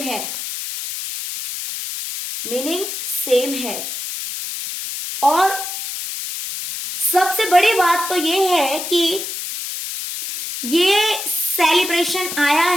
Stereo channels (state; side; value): noise; left; hiss, 6 dB below the sound